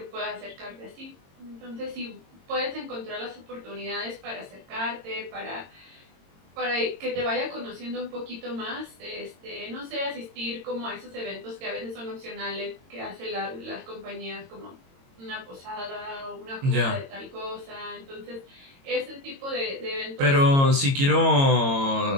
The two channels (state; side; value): late; left; 22 ms